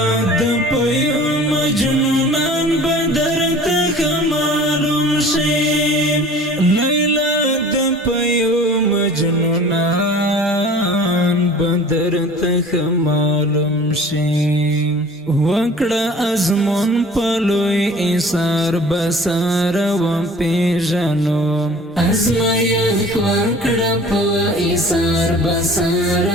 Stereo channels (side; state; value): both; normal; correlation 0.46